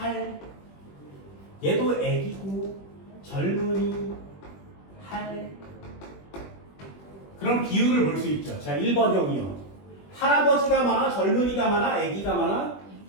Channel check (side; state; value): right; late; 21 ms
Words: 얘도 애기고 젊은이, 할. 그럼 비율을 볼 수 있죠. 자, 1번형이요. 할아버지가 많아, 젊은이가 많아, 애기가 많아?